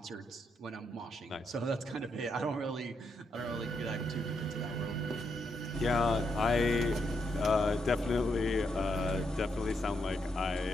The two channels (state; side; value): normal; both; correlation 0.80